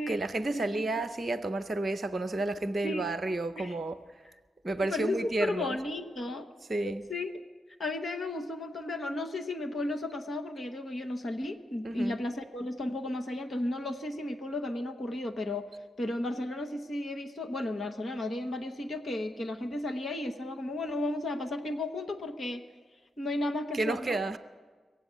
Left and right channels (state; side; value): normal; both; correlation 0.82